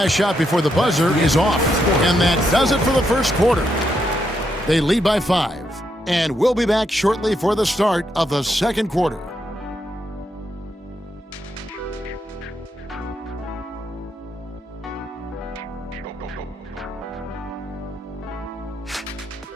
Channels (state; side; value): normal; both; correlation 0.80